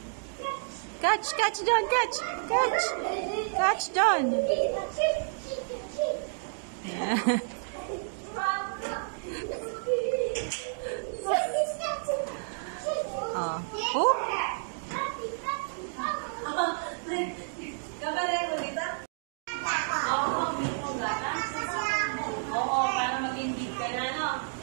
Catch John, catch. Catch John. Yeah. Oh.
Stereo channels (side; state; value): left; silent; digital silence